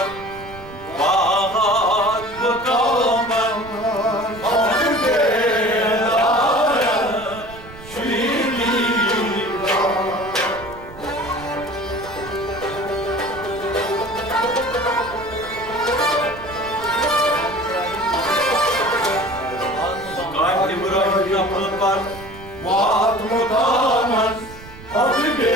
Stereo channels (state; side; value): noise; right; rumble, 17 dB below the sound